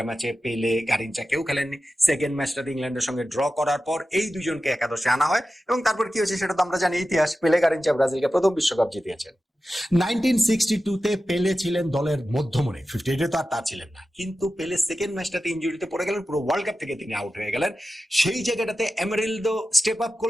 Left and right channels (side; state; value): both; normal; correlation 0.93